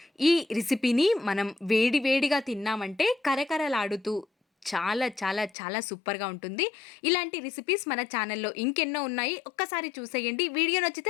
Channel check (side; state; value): right; drops out; at 5.5 s